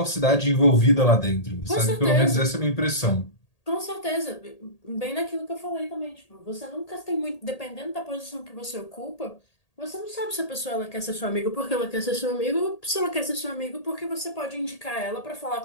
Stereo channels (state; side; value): late; right; 1.8 ms